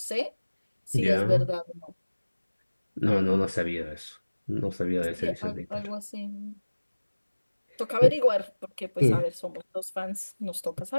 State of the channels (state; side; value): inverted; both; correlation -1.00